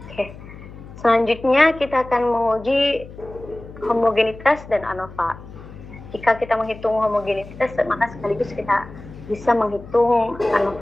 Oke. Selanjutnya kita akan menguji homogenitas dan ANOVA. Jika kita menghitung homogenitas, maka sekaligus kita bisa menghitung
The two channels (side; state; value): left; noise; hum, 16 dB below the sound